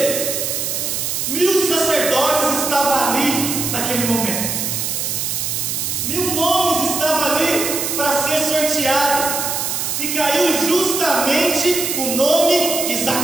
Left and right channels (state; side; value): noise; right; hiss, 1 dB below the sound